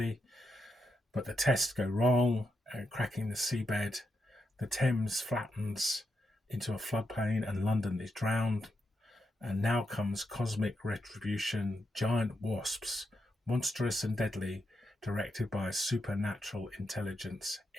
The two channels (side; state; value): both; normal; correlation 0.84